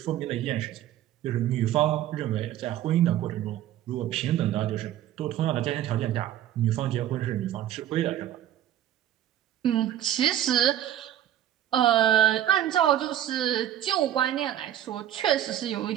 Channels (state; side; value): quieter; left; 11.8 dB